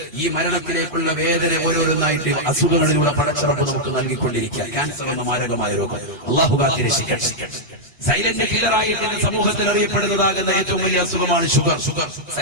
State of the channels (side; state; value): both; normal; correlation -0.05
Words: ഈ മരണത്തിലേക്കുള്ള വേദന ഓരോന്നായിട്ട് അസുഖങ്ങളിലൂടെ പടച്ചറപ്പ് നമുക്ക് നൽകിക്കൊണ്ടിരിക്കുക. ക്യാൻസർ എന്ന മാരകമായ രോഗം അല്ലാഹു കാത്തിരക്ഷിക്കട്ടെ. സൈലന്റ് കില്ലറായിട്ട് സമൂഹത്തിൽ അറിയപ്പെടുന്നതാകുന്ന ഏറ്റവും വലിയ അസുഖമാണ് ഷുഗർ.